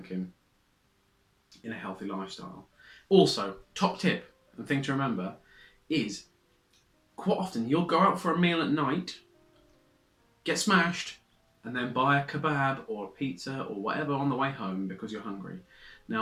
in a healthy lifestyle. Also, top tip and thing to remember is quite often you'll go out for a meal at night, get smashed, and then buy a kebab or a pizza or whatever on the way home because you're hungry.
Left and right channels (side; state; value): both; identical; correlation 1.00